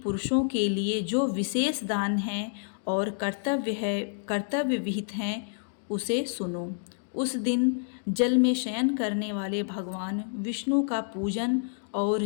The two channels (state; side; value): silent; right; digital silence